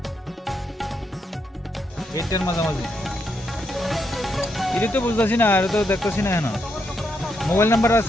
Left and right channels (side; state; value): both; normal; correlation 0.79